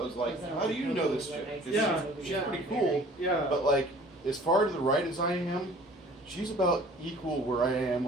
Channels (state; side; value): normal; both; correlation 0.50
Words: like, how do you know this chick? 'Cause Yeah, she's yeah. pretty cool, Yeah. but like as far to the right as I am, she's about equal where I am